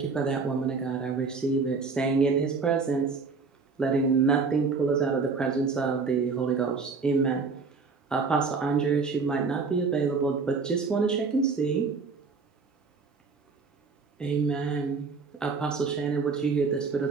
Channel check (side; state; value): left; quieter; 4.7 dB